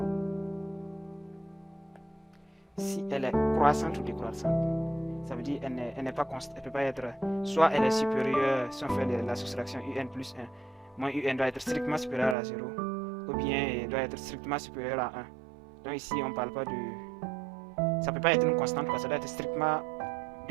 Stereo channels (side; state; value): left; drops out; at 12.4 s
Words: si elle est croissante ou décroissante. Ça veut dire qu'elle n'est pas constante, elle peut pas être, soit elle est supérieure, si on fait la soustraction un plus 1, moins un doit être strictement supérieur à 0, ou bien elle doit être strictement supérieur à 1. Donc ici on parle pas de, ça peut pas être une constante, ça doit être strictement